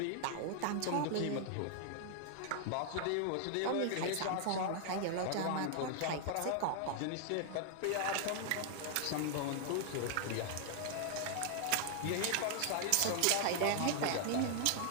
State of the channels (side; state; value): both; different; correlation 0.00